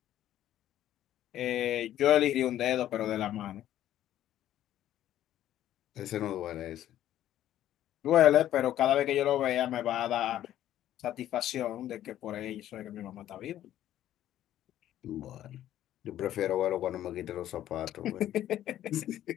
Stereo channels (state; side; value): quieter; right; 12.4 dB